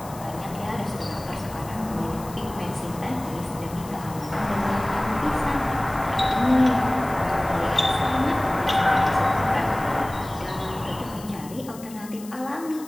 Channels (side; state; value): left; noise; hiss, 18 dB below the sound